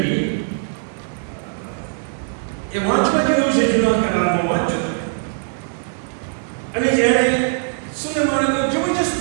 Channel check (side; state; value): left; silent; digital silence